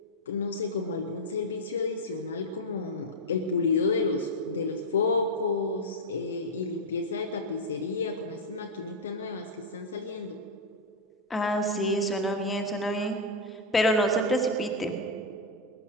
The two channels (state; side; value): normal; both; correlation 0.00